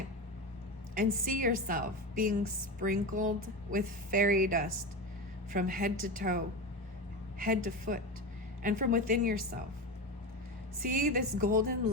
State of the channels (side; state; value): both; normal; correlation 0.22